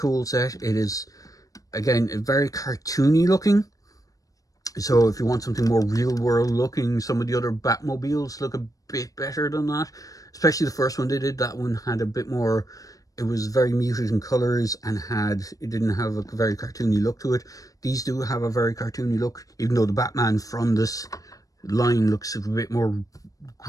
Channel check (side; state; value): right; late; 0.17 ms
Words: set. It is, again, very cartoony looking. So if you want something more real world looking, some of the other Batmobiles look a bit better than that. Especially the first one they did. That one had a bit more, it was very muted in colors, and it didn't have a very cartoony look to it. These do have a very cartoony look, even though the Batman from this line looks a bit more